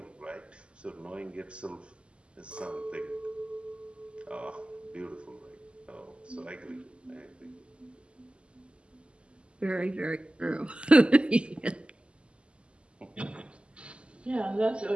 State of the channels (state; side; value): late; left; 0.053 ms